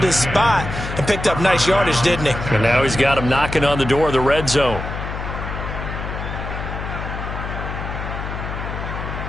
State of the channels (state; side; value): noise; left; hum, 6 dB below the sound